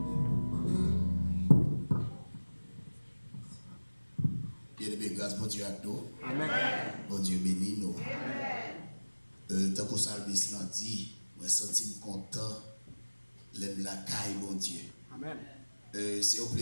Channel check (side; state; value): both; inverted; correlation -1.00